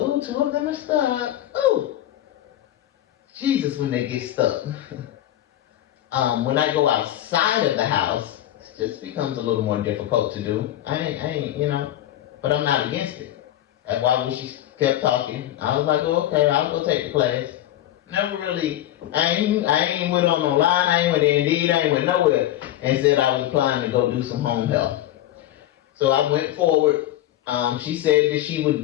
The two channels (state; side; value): quieter; right; 13.2 dB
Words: two of them are stuck. Ooh, Jesus, when they get stuck. When I go outside of the house, it just becomes a little more difficult to do. I ain't, but I'm not against it. That's why when she kept talking, I was like, oh, okay, I'll go take the class. Never really, I ain't went on no line, I ain't went Indeed, I ain't went nowhere, and said I was applying to go do some home health. So I went forward. She said that she